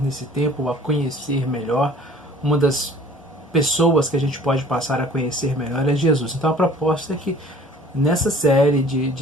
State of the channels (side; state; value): both; normal; correlation 0.50